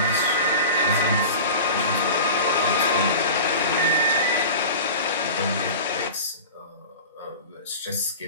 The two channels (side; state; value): both; inverted; correlation -0.34